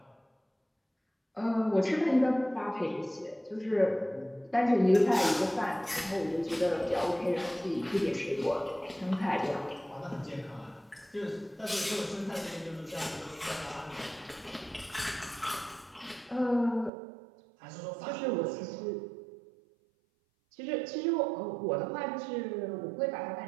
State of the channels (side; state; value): left; drops out; at 16.9 s